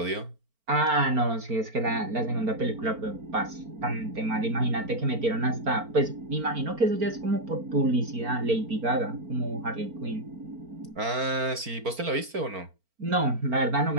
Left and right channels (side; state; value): left; late; 4.4 ms